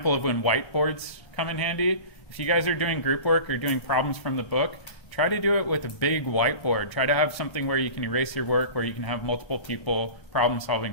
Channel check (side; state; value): right; late; 1.0 ms